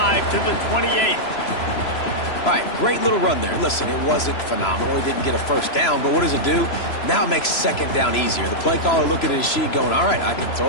to the 28. All right, great little run there. Listen, it wasn't phenomenal. He didn't get a 1st down, but what does it do? Now it makes 2nd down easier. The play caller looking at his sheet going, all right, I can throw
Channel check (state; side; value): late; right; 3.0 ms